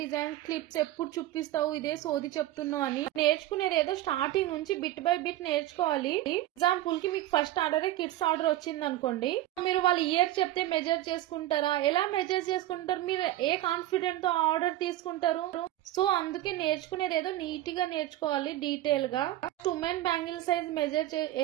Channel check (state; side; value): quieter; left; 14.5 dB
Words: డిజైన్స్ క్లిప్స్ ఎప్పుడు చూపిస్తావు, ఇదే సోది చెప్తున్నావు అని. నేర్చుకునేది ఏదో స్టార్టింగ్ నుంచి బిట్ బై బిట్ నేర్చుకోవాలి. ఎగ్జాంపుల్ కి మీకు ఫస్ట్ ఆర్డర్ కిడ్స్ ఆర్డర్ వచ్చింది అనుకోండి, మీరు వాళ్ళ ఇయర్ చెప్తే మెజర్ చేసుకుంటారా? ఎలా మెజర్ చేసుకుంటారు? మీరు ఏ కాన్ఫిడెంట్ తో ఆర్డర్ తీసుకుంటారు? సో అందుకే నేర్చుకునేది ఏదో నీట్ గా నేర్చుకోవాలి, డీటెయిల్ గా. ఉమెన్ బ్యాంగిల్ సైజ్ మెజర్